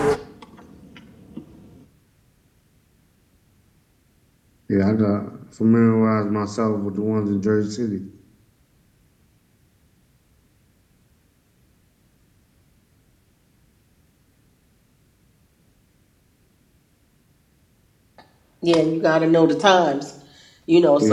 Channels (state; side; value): identical; both; correlation 1.00